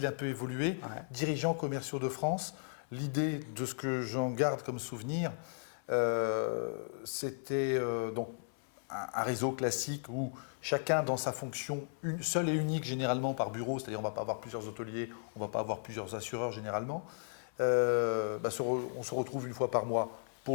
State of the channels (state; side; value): silent; right; 54 dB below the other